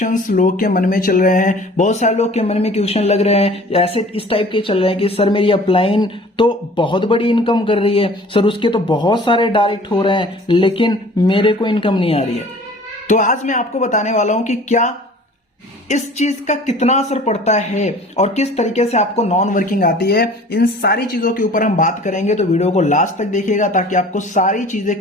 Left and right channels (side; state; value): both; normal; correlation 0.47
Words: लोग के मन में चल रहे हैं, बहुत सारे लोग के मन में क्वेश्चन लग रहे हैं, ऐसे इस टाइप के चल रहे हैं कि सर मेरी अपलाइन तो बहुत बड़ी इनकम कर रही है, सर उसके तो बहुत सारे डायरेक्ट हो रहे हैं, लेकिन मेरे को इनकम नहीं आ रही है। तो आज मैं आपको बताने वाला हूं कि क्या इस चीज का कितना असर पड़ता है और किस तरीके से आपको नॉन वर्किंग आती है। इन सारी चीजों के ऊपर हम बात करेंगे, तो वीडियो को लास्ट तक देखिएगा ताकि आपको सारी चीजें